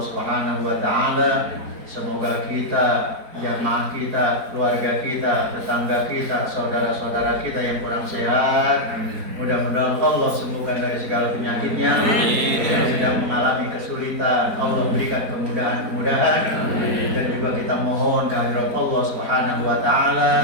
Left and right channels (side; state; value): left; late; 4.5 ms